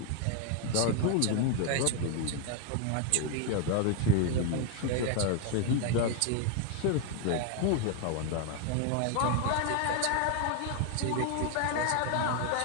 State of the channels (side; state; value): both; different; correlation 0.01